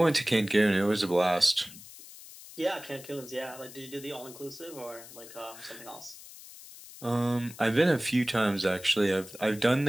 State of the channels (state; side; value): noise; left; hiss, 17 dB below the sound